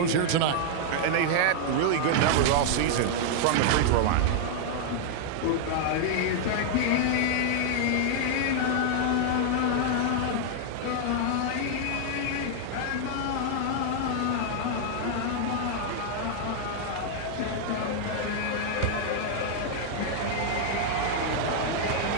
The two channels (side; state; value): both; different; correlation -0.01